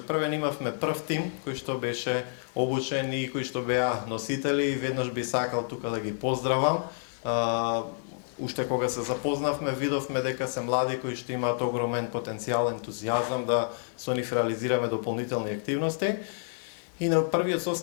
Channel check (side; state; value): right; silent; digital silence